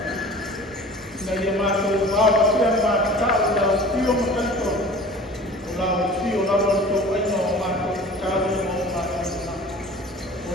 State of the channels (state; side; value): normal; both; correlation 0.43